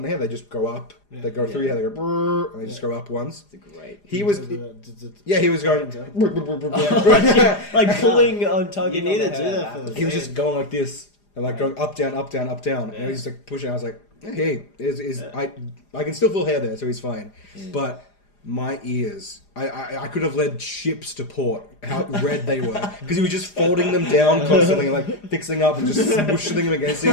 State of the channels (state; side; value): late; right; 4.9 ms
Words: the hair, they just go up, they go through your hair, they go brrr, and they just go up once. It's great. He was, he was going, Like pulling on tugging. You need on to the do hair. that for the he was just going like this, and going up, down, up, down, up, down, and he's pushing. I was like, hey, I can still feel hair there, so he's fine, but. My ears, I could have led ships to port, how red they were. Because he was just folding them down constantly and fixing up and just smooshing them against